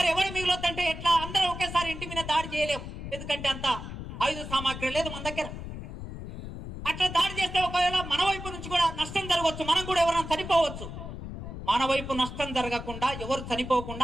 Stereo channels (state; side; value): noise; left; rumble, 9 dB below the sound